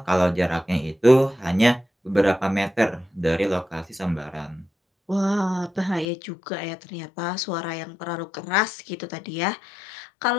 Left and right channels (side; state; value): right; drops out; at 6.1 s